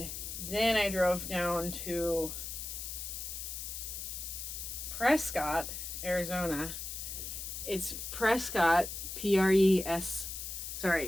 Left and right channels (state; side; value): noise; left; hiss, 6 dB below the sound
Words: then I drove down to Prescott, Arizona. It's Prescott, Prescott,